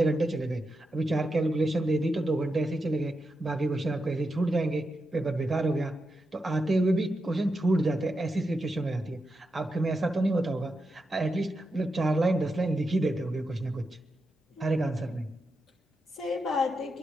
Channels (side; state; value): both; normal; correlation 0.87